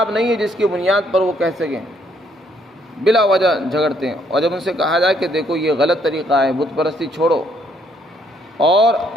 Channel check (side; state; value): both; normal; correlation 0.69